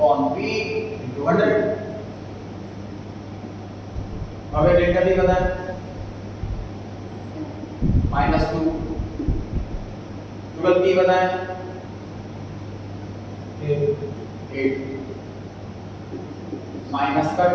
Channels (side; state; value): both; identical; correlation 1.00